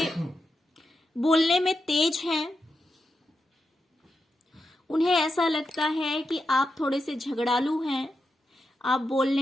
बोलने में तेज हैं। उन्हें ऐसा लगता है कि आप थोड़े से झगड़ालू हैं, आप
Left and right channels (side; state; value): both; normal; correlation 0.88